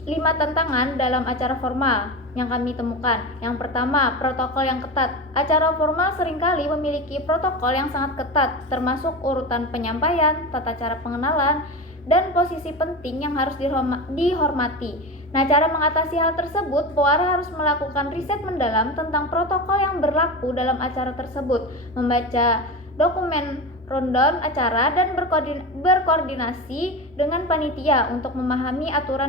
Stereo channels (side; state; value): both; normal; correlation 0.24